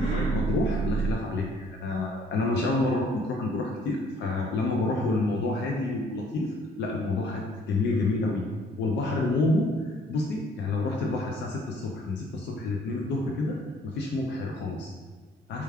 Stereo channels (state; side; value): normal; both; correlation 0.60